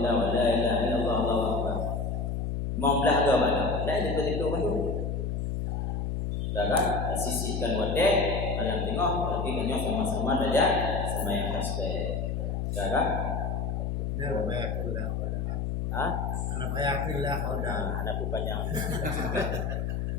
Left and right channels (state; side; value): noise; left; hum, 1 dB below the sound